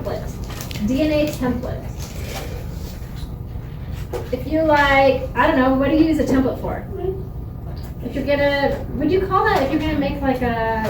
DNA template. If you like, I don't know, what do you use a template for? If you're gonna, would you call that, if you're gonna make like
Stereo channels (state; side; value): identical; both; correlation 1.00